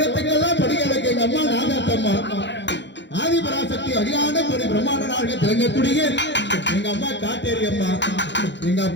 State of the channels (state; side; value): late; right; 0.52 ms